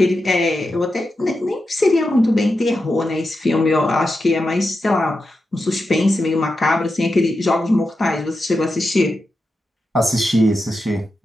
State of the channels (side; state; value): both; normal; correlation 0.89